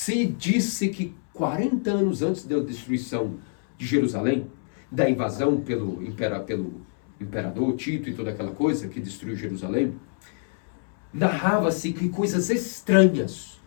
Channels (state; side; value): silent; right; 61 dB below the other